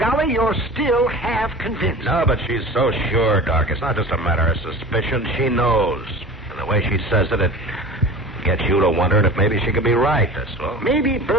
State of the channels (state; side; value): normal; both; correlation 0.37